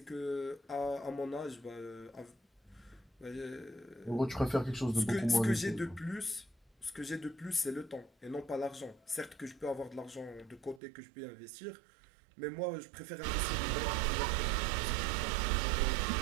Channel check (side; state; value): left; drops out; at 10.8 s